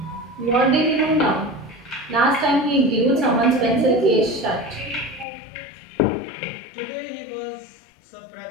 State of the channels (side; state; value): right; drops out; at 5.2 s